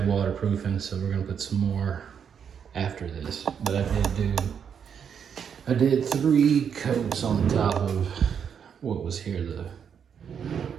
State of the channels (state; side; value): quieter; left; 7.6 dB